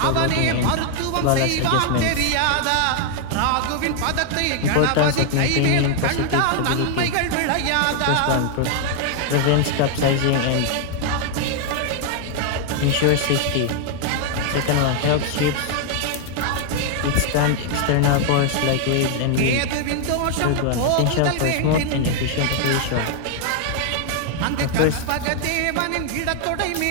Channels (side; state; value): both; different; correlation 0.00